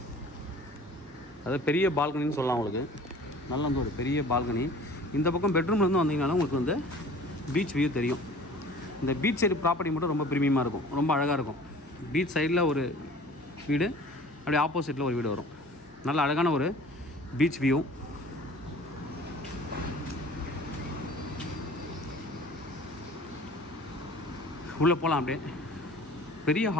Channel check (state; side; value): normal; both; correlation 0.46